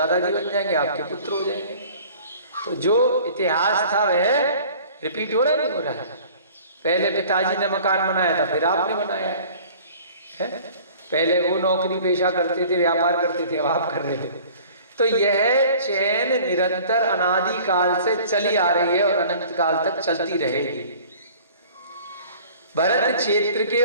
बन जाएंगे, आपके पुत्र हो जाएंगे। तो जो इतिहास था वह रिपीट हो रहा है, नहीं हो रहा है? पहले पिताजी ने मकान बनाया था, फिर आपने बनाया है। पहले वो नौकरी पेशा करते थे, व्यापार करते थे, अब आप कर रहे थे। तो यह चैन निरंतर अनादि काल से चली आ रही है और अनंत काल तक चलती रहेगी। भरत क्षेत्र के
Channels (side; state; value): both; inverted; correlation -0.48